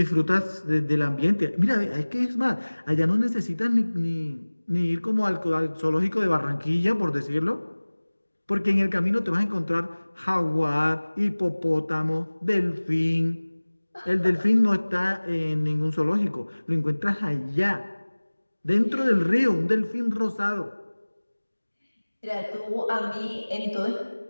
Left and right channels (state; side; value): inverted; both; correlation -1.00